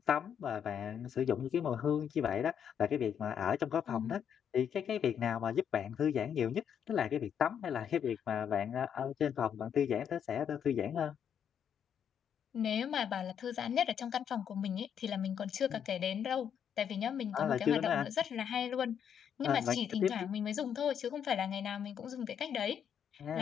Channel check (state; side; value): quieter; right; 8.3 dB